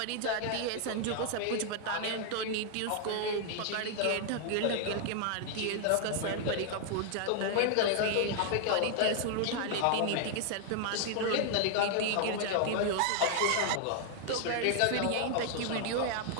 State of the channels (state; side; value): different; both; correlation 0.00